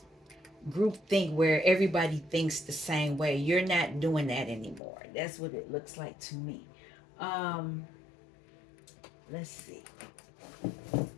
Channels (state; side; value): drops out; right; at 4.8 s